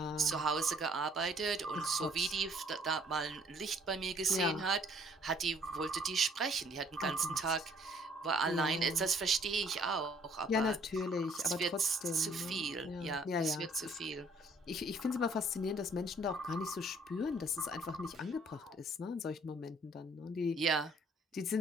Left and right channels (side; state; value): both; normal; correlation 0.60